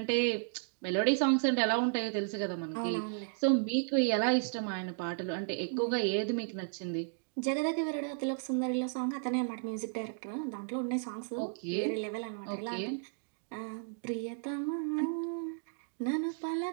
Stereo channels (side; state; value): left; silent; digital silence